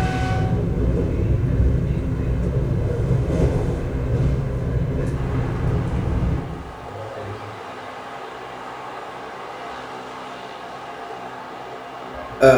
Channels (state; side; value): identical; both; correlation 1.00